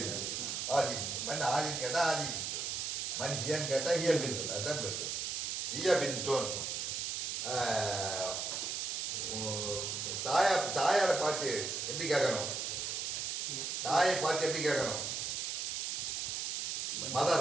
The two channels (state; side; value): noise; right; hiss, 2 dB below the sound